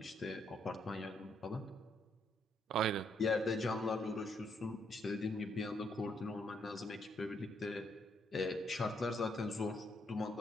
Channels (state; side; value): normal; both; correlation 0.73